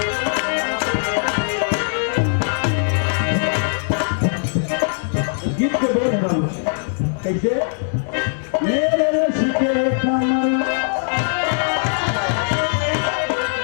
कैसे मेरे रश के कमर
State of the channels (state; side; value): silent; right; 63 dB below the other